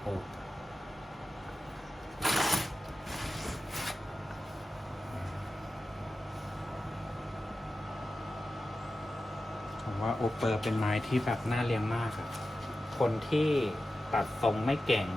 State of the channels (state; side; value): normal; both; correlation 0.93